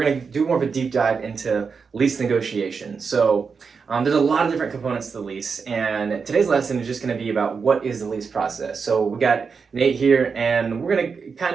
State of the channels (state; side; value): quieter; left; 5.5 dB